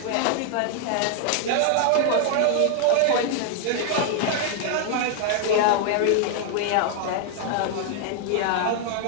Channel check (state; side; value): different; both; correlation 0.00